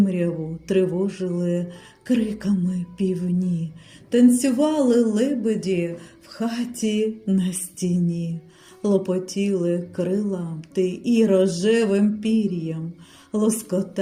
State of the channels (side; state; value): both; identical; correlation 1.00